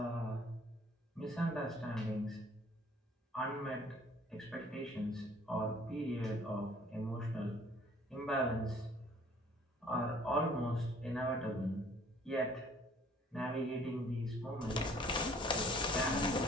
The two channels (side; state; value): both; normal; correlation 0.56